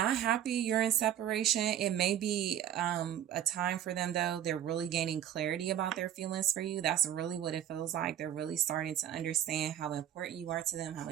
happy you're in separation. It may be a time for them, though. They're really gaining clarity about their feelings for you. That's really what it feels like. They're really starting to understand how important you are to them, how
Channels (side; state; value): left; quieter; 10.6 dB